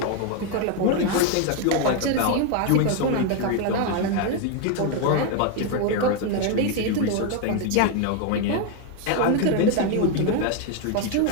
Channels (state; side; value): different; both; correlation 0.01